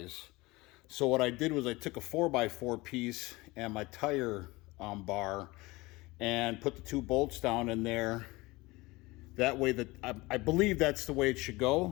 So what I did was I took a 4x4 piece and my tire bar and put the 2 bolts down in there. That way, that I believe that's the way it should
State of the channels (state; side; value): quieter; right; 22.0 dB